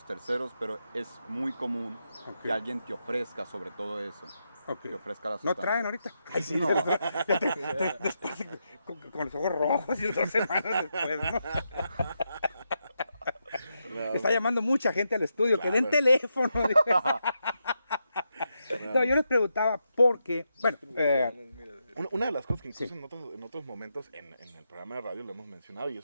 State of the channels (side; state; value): both; inverted; correlation -0.84